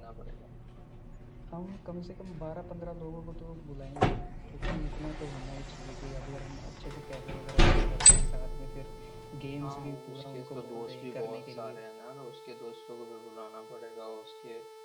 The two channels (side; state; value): both; identical; correlation 1.00